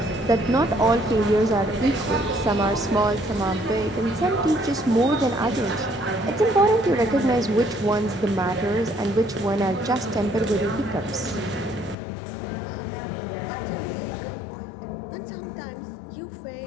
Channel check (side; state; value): right; drops out; at 12.0 s